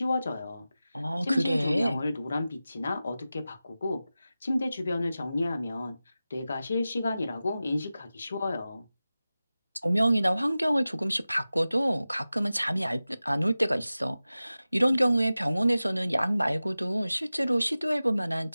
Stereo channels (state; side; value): inverted; both; correlation -0.96